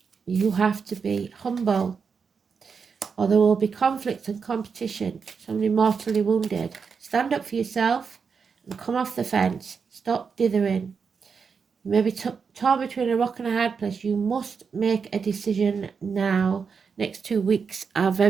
you have to be humble, or there will be conflict and competition. Somebody mortally wounded. Stand up for yourself and come off the fence. Stop dithering. You may be torn between a rock and a hard place. You must make a decision now. Next 2 weeks are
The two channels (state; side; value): quieter; left; 5.8 dB